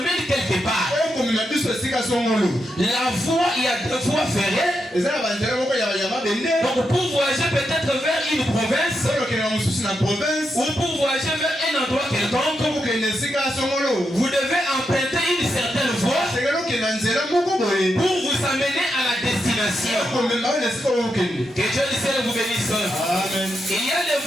quelque part. La voie, il y a deux voies ferrées. Donc pour voyager peut-être vers une province ou pour voyager vers un endroit quelconque, vous devez emprunter une certaine voie pour vous amener à la destination. Que Dieu du ciel vous bénisse. Amen. Il y a des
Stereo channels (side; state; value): both; normal; correlation 0.85